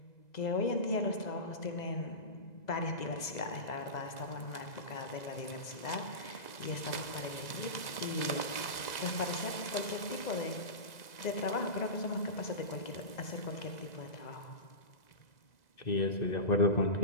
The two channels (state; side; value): late; right; 2.0 ms